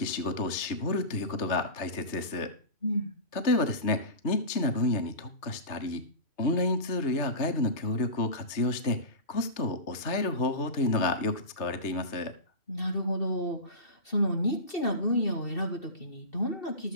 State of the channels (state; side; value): late; right; 3.2 ms